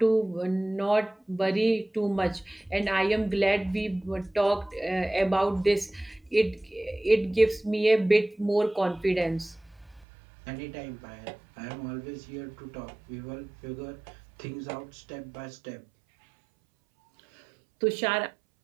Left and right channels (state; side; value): drops out; left; at 10.1 s